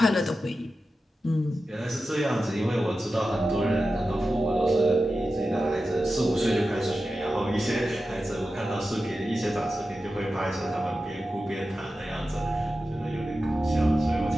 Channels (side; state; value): both; normal; correlation 0.92